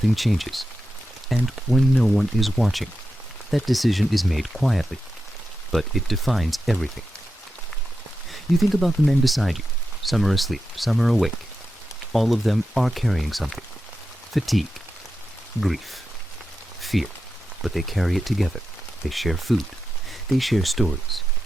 changes, and when no one is watching. That decision is made quietly, but it defines everything. You think about the men beside you. Some are asleep, some are awake. All of them are carrying something. Fatigue, grief, fear, but they carry it together. They share food. They share stories.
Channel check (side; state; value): both; normal; correlation 0.90